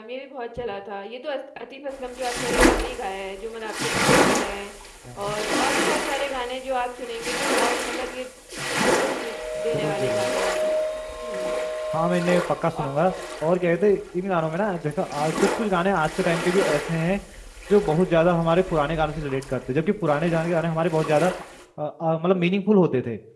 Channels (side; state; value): both; identical; correlation 1.00